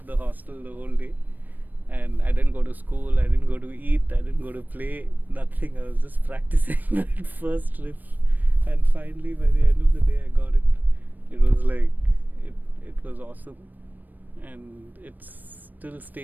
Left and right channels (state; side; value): late; left; 0.087 ms